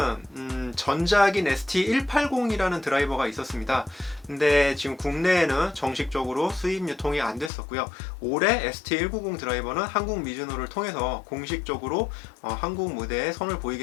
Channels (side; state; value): right; drops out; at 7.5 s